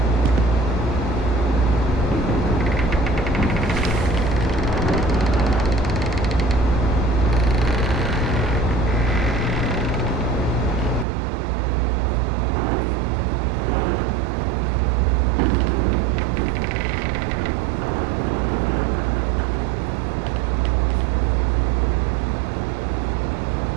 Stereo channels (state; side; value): drops out; left; at 11.1 s